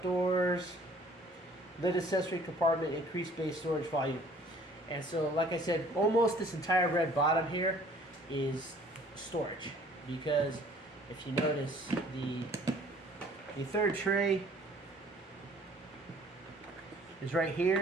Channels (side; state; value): both; normal; correlation 0.54